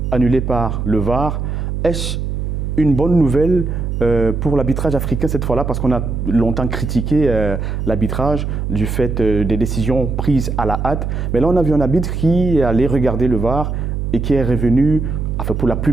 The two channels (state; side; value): noise; right; hum, 2 dB below the sound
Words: annulés par le VAR. Est-ce une bonne nouvelle pour l'arbitrage africain cette fois-là, parce qu'on a longtemps critiqué l'arbitrage du fait des décisions prises à la hâte. Mais là, on a vu un arbitre qui allait regarder le VAR et qui est revenu, enfin pour la